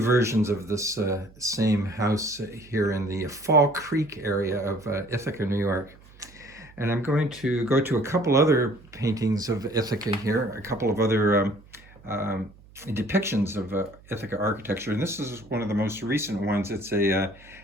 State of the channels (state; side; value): noise; right; hum, 24 dB below the sound